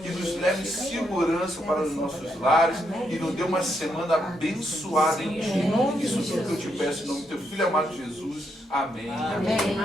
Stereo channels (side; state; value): both; normal; correlation 0.79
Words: e nos leve em segurança para os nossos lares e nos dê uma semana abençoada em Ti. Isso tudo que eu te peço em nome do Teu Filho amado Jesus. Amém. Amém.